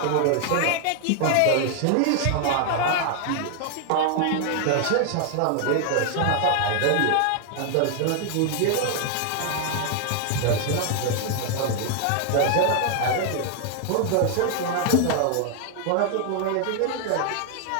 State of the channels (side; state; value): both; different; correlation 0.00